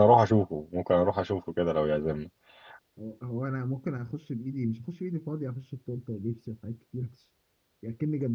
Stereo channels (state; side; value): identical; both; correlation 1.00